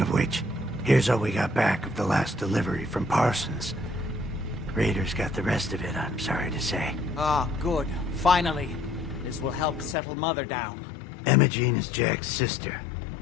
which, here's all we got back of the last delivery from Parsons. Raiders got the rest of it, I'm sorry to say. Ah, good. Finally. This will help settle Mother down. Emogene is Jack's sister.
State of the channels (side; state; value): right; drops out; at 10.0 s